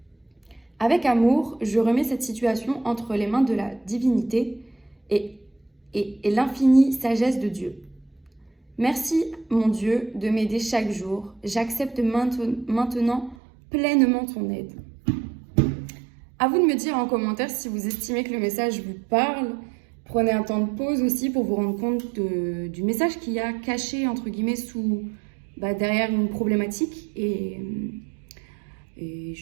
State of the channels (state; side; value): drops out; left; at 13.4 s